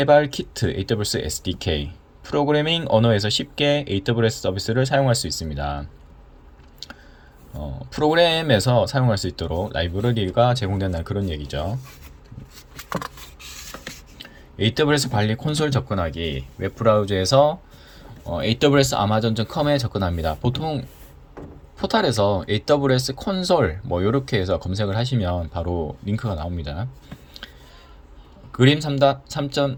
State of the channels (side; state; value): both; identical; correlation 1.00